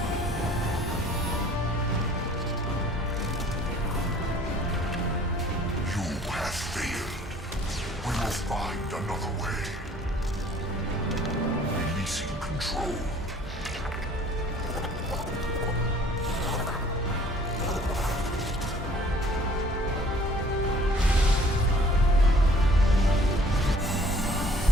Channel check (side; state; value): both; normal; correlation 0.55